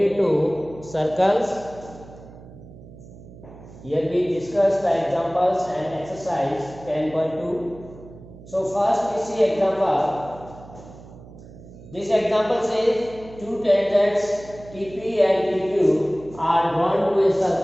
to circles. Here we discuss the examples and exercise 10.2. So first we see example. This example says two tangents TP and TQ are drawn to a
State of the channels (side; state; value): right; noise; hum, 18 dB below the sound